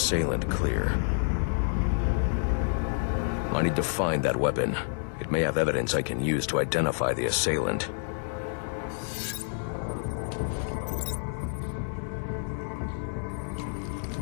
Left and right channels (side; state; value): right; silent; 56 dB below the other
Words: clear. I need to find that weapon. It may have evidence I can use to identify the assailant.